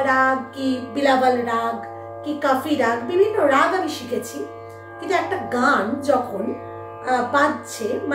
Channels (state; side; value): identical; both; correlation 1.00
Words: राग की बिलावल राग की काफी राग विभिन्न राग आमि शिखेछि, किन्तु एकटा गान जखन बाजছে